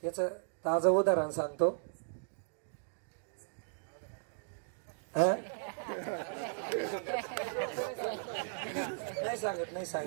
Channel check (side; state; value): left; silent; digital silence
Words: त्याचं ताजं उदाहरण सांगतो. नाही